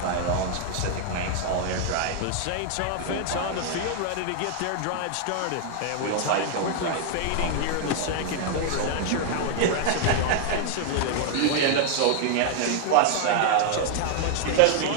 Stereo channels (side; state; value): both; different; correlation 0.00